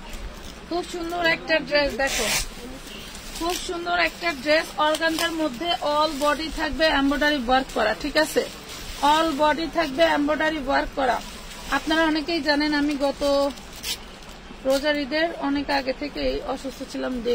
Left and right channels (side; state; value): both; identical; correlation 1.00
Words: খুব সুন্দর একটা ড্রেস, দেখো খুব সুন্দর একটা ড্রেস। অর্গানজার মধ্যে অল বডি থাকবে এমব্রয়ডারি ওয়ার্ক করা, ঠিক আছে, অল বডি থাকবে এমব্রয়ডারি ওয়ার্ক করা। আপনারা অনেকেই জানেন আমি গত রোজার ঈদের অনেক আগে থেকেই অসুস্থ ছিলাম